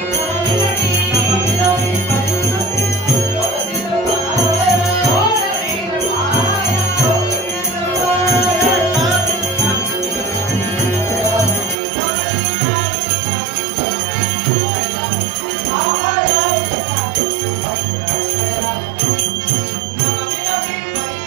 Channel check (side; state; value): left; drops out; at 11.8 s